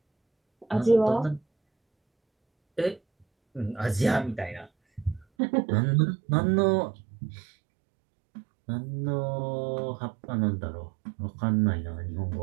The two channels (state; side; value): drops out; left; at 5.2 s